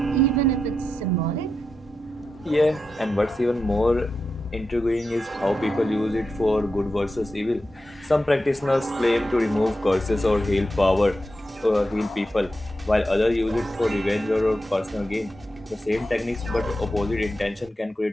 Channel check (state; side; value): normal; both; correlation 0.88